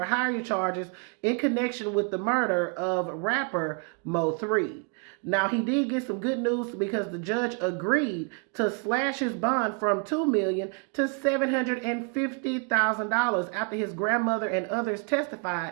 hire charges in connection with the murder of rapper Mo3. Now, he did get some good news because the judge agreed to slash his bond from $2 million to $750,000 after his grandmother and others testified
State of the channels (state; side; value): quieter; left; 37.5 dB